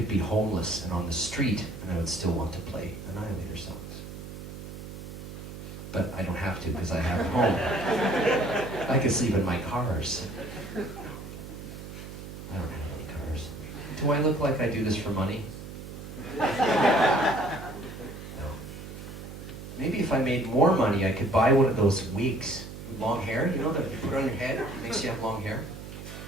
be homeless and on the street and I would still want to play Annihilator songs. But I don't have to because I have a home. I can sleep in my cars. I don't have any cars. Do I look like I do this for money? No. Maybe if I made more money, I could buy one of those wigs with long hair, you know, that you put on your head, it makes you have long hair.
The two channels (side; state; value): right; noise; hum, 11 dB below the sound